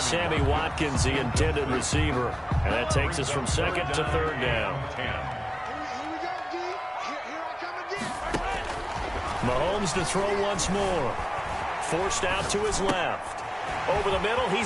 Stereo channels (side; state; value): both; identical; correlation 1.00